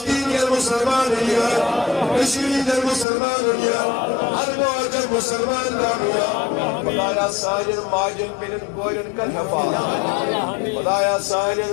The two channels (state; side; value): drops out; right; at 3.1 s